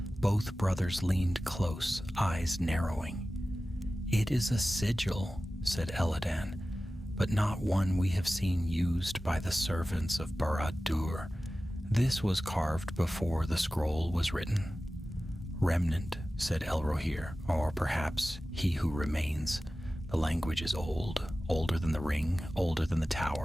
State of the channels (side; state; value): both; normal; correlation 0.95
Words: Both brothers leaned close, eyes narrowing. "It is a sigil," said Eladan, "but not one we have seen used by the servants of Barad-dûr. This was carved before the scroll was written." "Remnant," said Elrohir, "or perhaps he who remains. The language is old, older than the ring, older than the